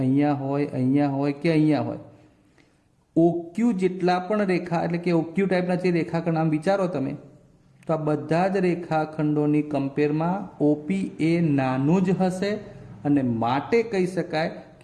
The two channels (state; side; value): identical; both; correlation 1.00